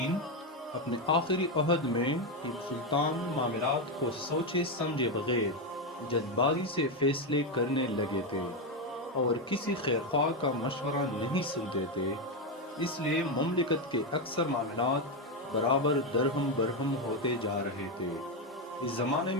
اپنے آخری عہد میں ٹیپو سلطان معاملات کو سوچے سمجھے بغیر جلد بازی سے فیصلے کرنے لگے تھے اور کسی خیرخواہ کا مشورہ نہیں سنتے تھے، اس لیے مملکت کے اکثر معاملات برابر درہم برہم ہوتے جا رہے تھے۔ اس زمانے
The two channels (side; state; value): both; normal; correlation 0.08